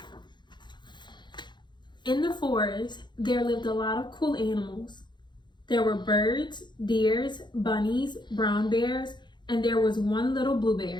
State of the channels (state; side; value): late; right; 0.22 ms